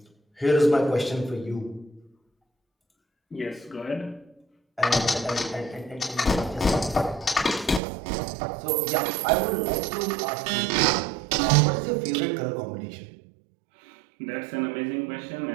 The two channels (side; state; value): left; drops out; at 7.8 s